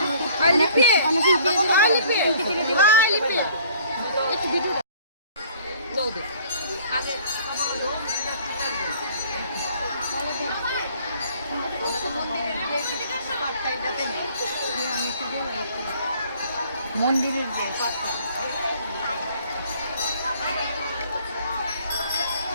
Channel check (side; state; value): both; inverted; correlation -0.55